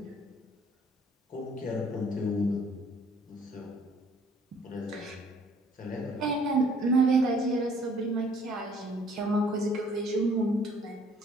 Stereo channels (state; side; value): normal; both; correlation 0.59